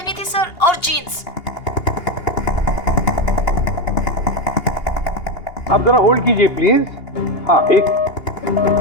थी सर और जीन्स। आप जरा होल्ड कीजिए प्लीज। हाँ एक,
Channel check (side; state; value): right; late; 2.8 ms